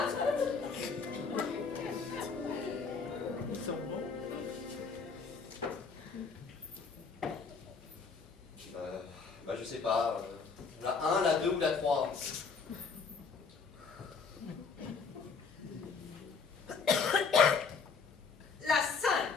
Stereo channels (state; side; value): quieter; right; 5.1 dB